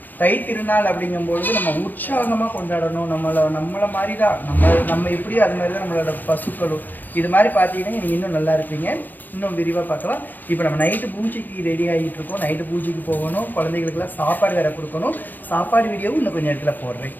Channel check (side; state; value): right; late; 0.086 ms